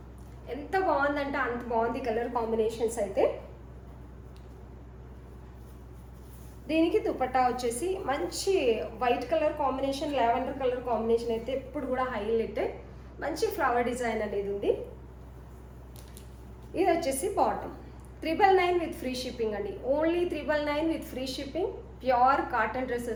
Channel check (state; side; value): identical; both; correlation 1.00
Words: ఎంత బాగుందంటే అంత బాగుంది కలర్ కాంబినేషన్స్ అయితే. దీనికి దుపట్టా వచ్చేసి మంచి white colour combination, lavender colour combination అయితే ఎప్పుడు కూడా హైలైట్. మంచి ఫ్లవర్ డిజైన్ అనేది ఉంది. ఇది వచ్చేసి బాటమ్ 999 విత్ ఫ్రీ షిప్పింగ్ అండి. Only 999 with free shipping. Pure cotton dress